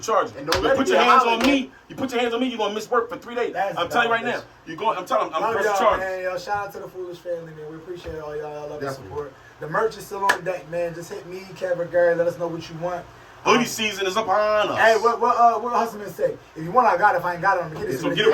charges. And don't You let it put be your a hands on holiday. me, you're going to miss work for 3 days. That's I'm telling you right now. dumb, I'm telling you, I'm Love pressing y'all, charges. man. Yo, shout out to the Foolish family, man. We appreciate all y'all. Y'all love the Definitely. support. The merch is still on deck, man. Just hit me, Kevin, Gary. Let us know what you want. Hoodie season is upon us. Hey, what Hustleman say? If you want, I got it. If I ain't got it, I'm gonna get it. So get it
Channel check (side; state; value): both; identical; correlation 1.00